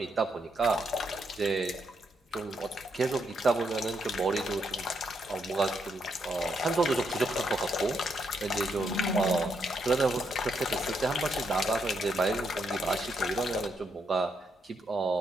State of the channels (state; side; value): normal; both; correlation 0.78